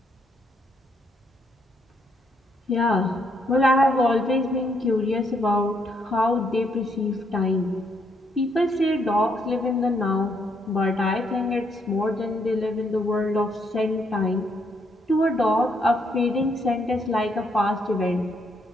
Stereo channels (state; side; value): normal; both; correlation 0.73